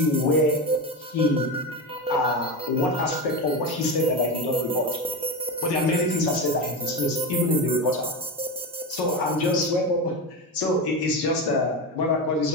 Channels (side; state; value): both; normal; correlation 0.18